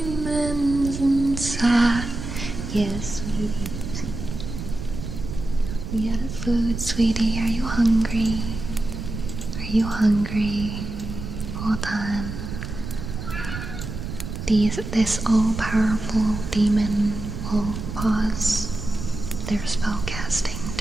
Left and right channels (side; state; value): right; noise; rumble, 7 dB below the sound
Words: inside. Yes, sweetie. We out of food, sweetie. Are you hungry? Are you hungry? Hold on. This all-powerful demon will pause their spell casting